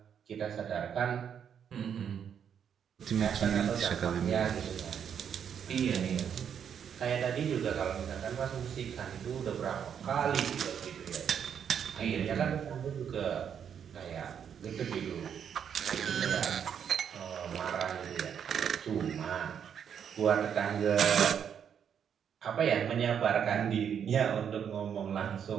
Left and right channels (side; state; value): left; quieter; 8.1 dB